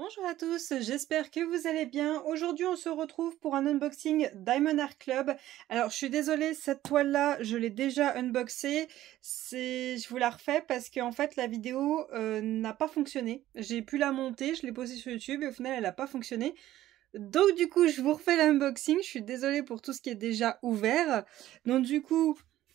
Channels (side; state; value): left; quieter; 14.1 dB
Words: Bonjour à tous, j'espère que vous allez bien. Aujourd'hui on se retrouve pour un unboxing Diamond Art Club. Alors je suis désolée, cette toile là je l'ai déjà unboxée. Je vous la refais parce qu'en fait la vidéo n'a pas fonctionné. J'ai pu la monter, je l'ai posée sur YouTube et au final elle n'a pas fonctionné. Donc du coup je vous refais l'unboxing, je suis désolée pour tout ce qui est déjà ouvert. Donc du coup...